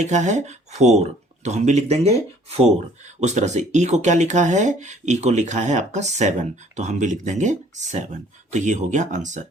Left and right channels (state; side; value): normal; both; correlation 0.57